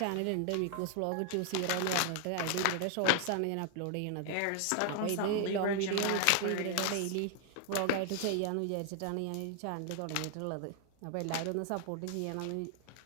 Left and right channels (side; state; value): both; different; correlation 0.00